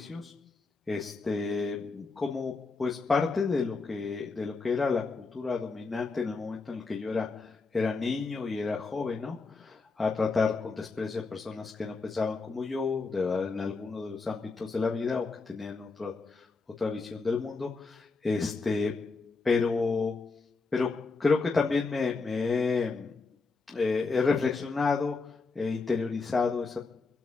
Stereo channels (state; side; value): quieter; right; 4.1 dB